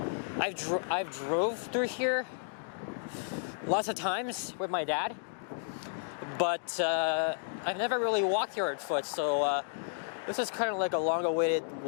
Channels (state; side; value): silent; right; digital silence